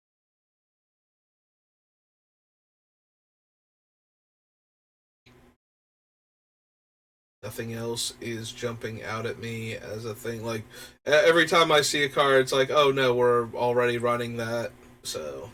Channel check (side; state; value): both; identical; correlation 1.00